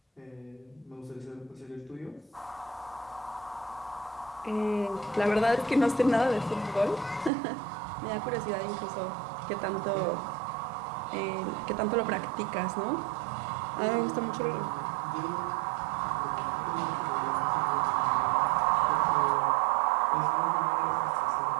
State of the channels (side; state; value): left; drops out; at 7.3 s